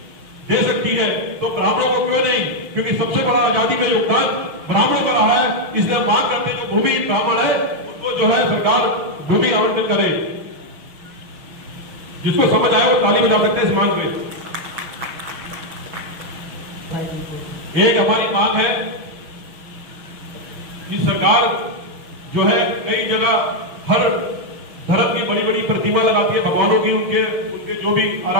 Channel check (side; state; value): left; late; 6.1 ms